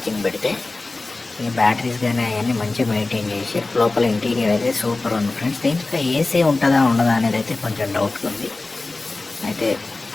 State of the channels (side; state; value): right; quieter; 3.3 dB